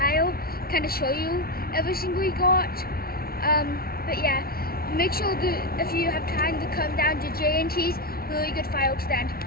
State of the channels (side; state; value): right; late; 0.44 ms